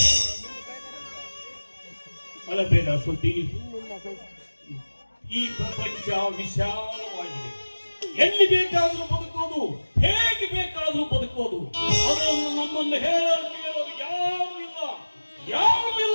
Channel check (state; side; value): inverted; both; correlation -1.00